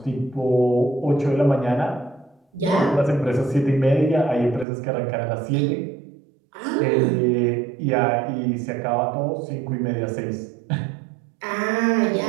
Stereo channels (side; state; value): left; drops out; at 4.7 s